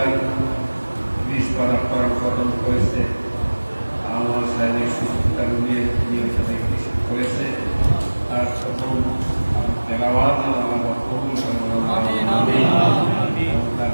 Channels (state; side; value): inverted; both; correlation -1.00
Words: 20 পারা করার কদম করেছে আমার শারীরিক সুস্থতা নিয়ে করেছে তার প্রথম তেলাওয়াত আল্লাহ কবুল করেন তার